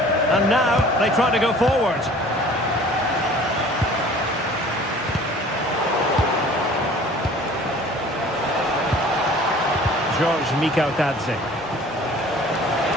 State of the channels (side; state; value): both; normal; correlation 0.48